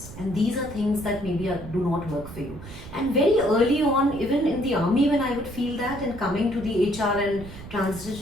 and these are things that maybe do not work for you. And very early on, even in the army, when I would feel that, and coming to the HR and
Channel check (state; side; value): noise; right; rumble, 14 dB below the sound